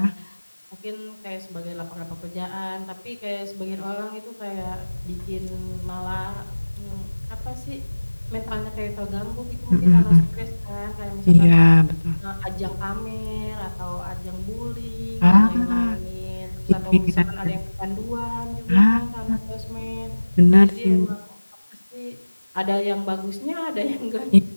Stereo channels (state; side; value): inverted; both; correlation -1.00